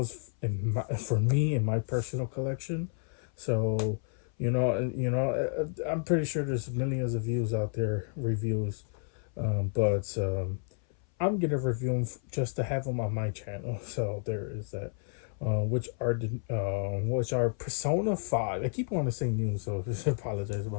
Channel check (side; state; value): right; silent; 57 dB below the other